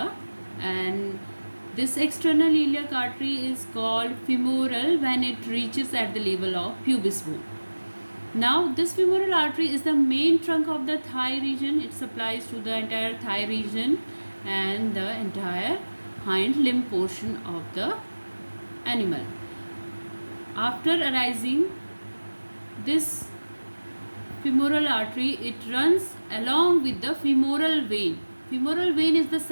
and this external iliac artery is called femoral when it reaches at the level of pubis bone. Now, this femoral artery is the main trunk of the thigh region. It supplies to the entire thigh region and the entire hind limb portion of the animal. After arising this femoral artery, it runs along with the femoral vein. Femoral vein is the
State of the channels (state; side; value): inverted; both; correlation -1.00